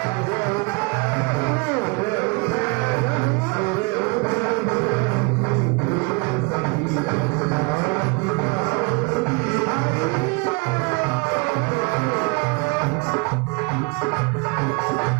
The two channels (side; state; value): left; quieter; 30.0 dB